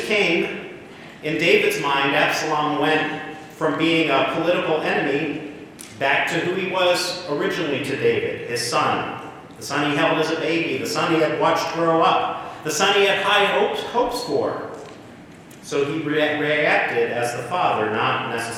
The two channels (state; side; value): identical; both; correlation 1.00